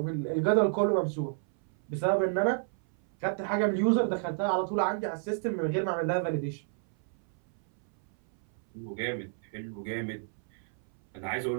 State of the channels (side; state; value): left; silent; 58 dB below the other